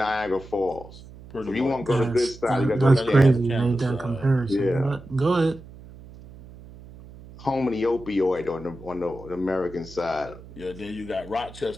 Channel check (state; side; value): noise; right; hum, 18 dB below the sound